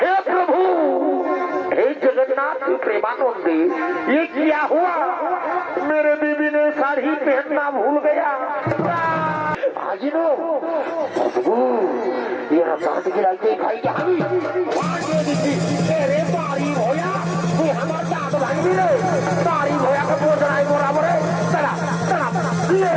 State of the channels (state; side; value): identical; both; correlation 1.00